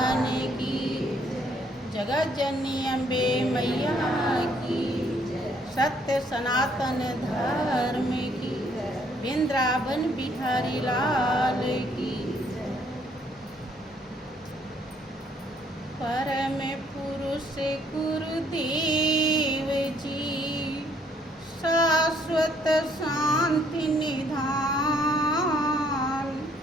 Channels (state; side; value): normal; both; correlation 0.66